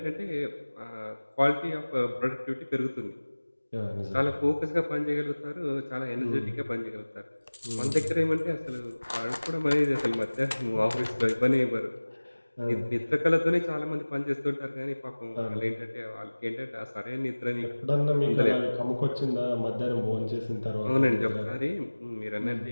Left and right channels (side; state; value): both; inverted; correlation -1.00